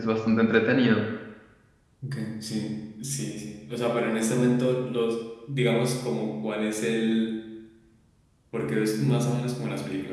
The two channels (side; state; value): both; identical; correlation 1.00